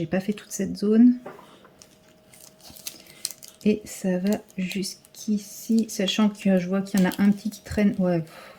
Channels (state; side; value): identical; both; correlation 1.00